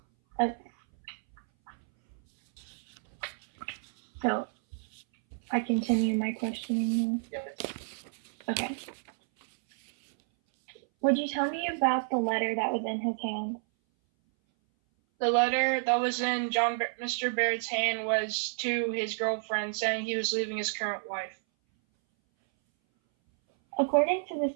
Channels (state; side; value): silent; left; 58 dB below the other